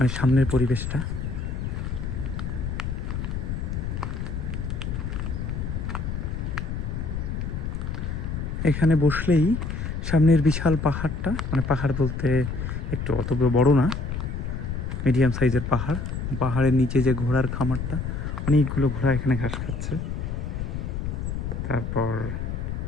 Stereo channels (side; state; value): left; noise; rumble, 3 dB below the sound